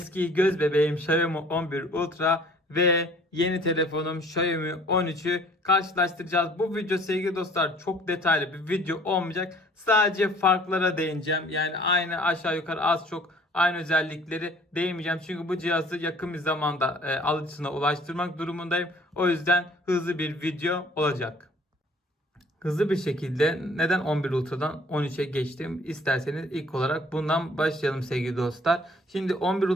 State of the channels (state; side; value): normal; both; correlation 0.54